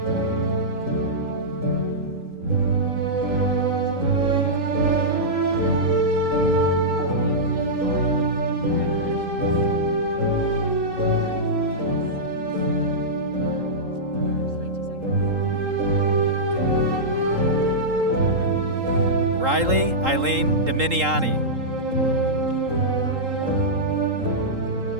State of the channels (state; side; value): late; left; 3.8 ms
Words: Riley Eileen Dominiani.